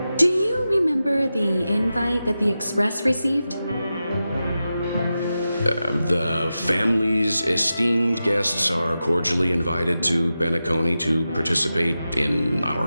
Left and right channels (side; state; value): both; inverted; correlation -0.92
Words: Do you remember the invite that the Express received? The family's esteemed guests are cordially invited to Penacony to participate in